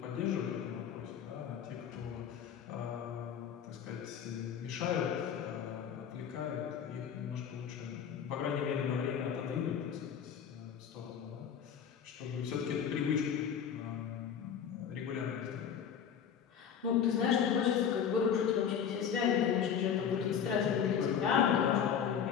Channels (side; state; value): right; quieter; 8.0 dB